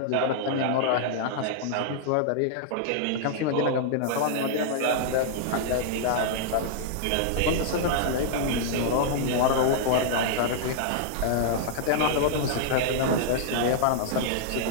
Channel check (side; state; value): both; different; correlation -0.01